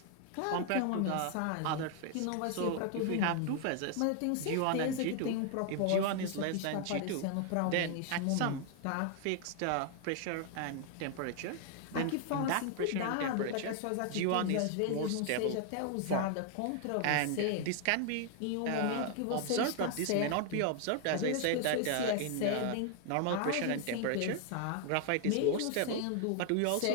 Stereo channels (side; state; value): both; different; correlation 0.00